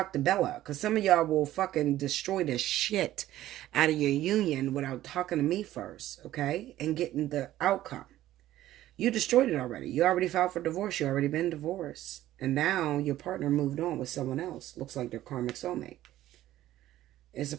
to Bella, because some of y'all will fucking destroy the shit out of your union without talking to me first, okay, and getting the outcome. You destroyed it already. You already filed for divorce. You already been divorced, and now your partner moved on with someone else. Looks like their karmic soulmate. It's a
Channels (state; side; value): quieter; left; 14.1 dB